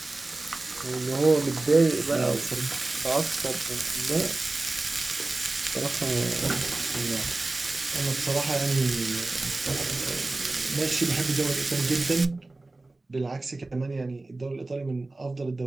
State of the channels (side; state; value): left; quieter; 3.1 dB